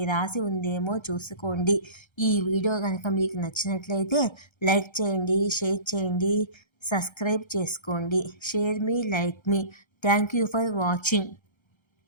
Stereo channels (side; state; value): right; late; 1.3 ms